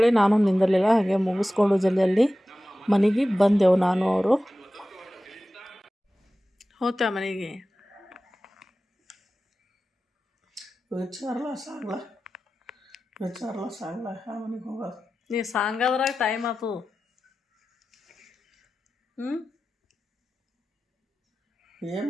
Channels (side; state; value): both; normal; correlation 0.95